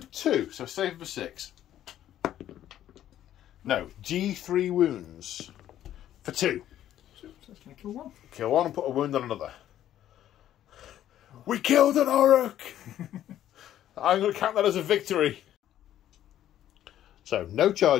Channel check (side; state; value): right; quieter; 11.8 dB